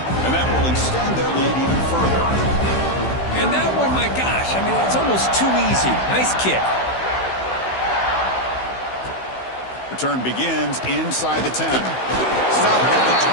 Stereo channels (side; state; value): right; late; 16 ms